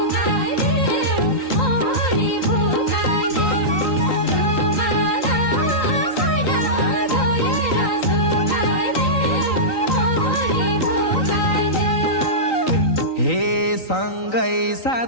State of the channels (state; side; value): late; right; 3.9 ms